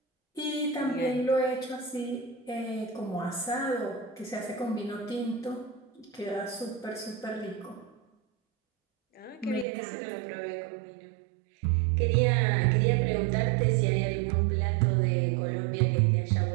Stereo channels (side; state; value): left; drops out; at 9.7 s